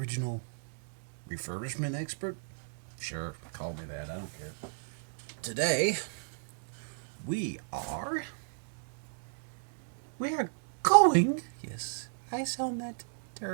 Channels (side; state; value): left; silent; digital silence